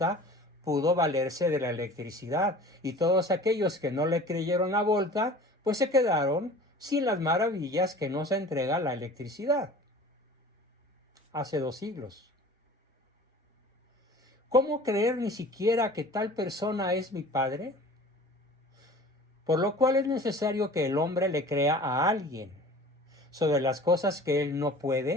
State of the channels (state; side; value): normal; both; correlation 0.43